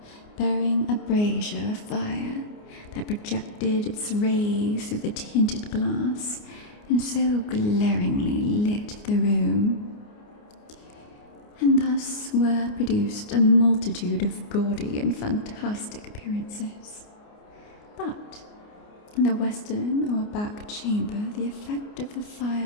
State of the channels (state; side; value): late; right; 29 ms